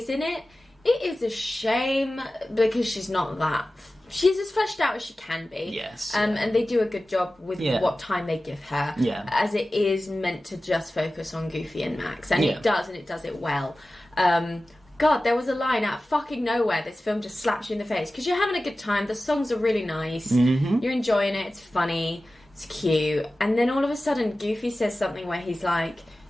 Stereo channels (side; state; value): both; normal; correlation 0.95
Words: in it. It is a shame because she's not that. She's as fleshed out as she can be. Yes. And they do a good job with what time they give her. Yeah. As it is meant to just focus on Goofy and Max. And it does, and it does it well. God, there was a line out of fucking nowhere. This film just slaps you in the face. Because you're having a good time. The songs are really nice. Mm-hmm. You're enjoying it. It's funny. It's cute. And then all of a sudden, Goofy says something where he's like,